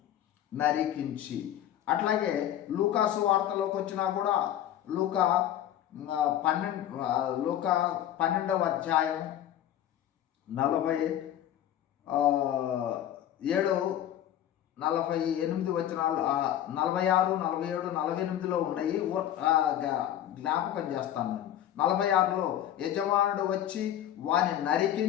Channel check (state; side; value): quieter; right; 11.5 dB